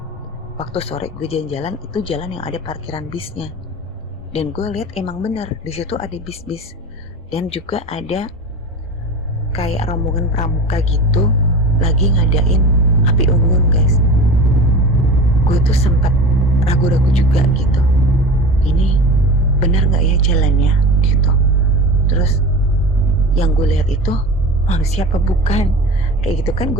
waktu sore gue jalan-jalan, itu jalan yang ada parkiran bisnya. Dan gue lihat emang bener di situ ada bis-bis, dan juga ada kayak rombongan pramuka gitu lagi ngadain api unggun guys. Gue tuh sempat ragu-ragu juga gitu, ini bener nggak ya jalannya gitu. Terus yang gue lihat itu manusia apa bukan, kayak gitu kan.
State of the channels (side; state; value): both; normal; correlation 0.32